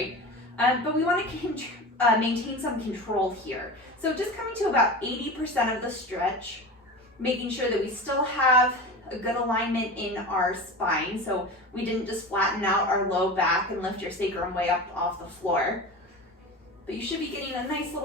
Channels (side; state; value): both; normal; correlation 0.30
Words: But we wanna maintain some control here. So just coming to about 80% of the stretch, making sure that we still have a good alignment in our spine, so we didn't just flatten out our low back and lift your sacrum way up off the floor. But you should be getting a nice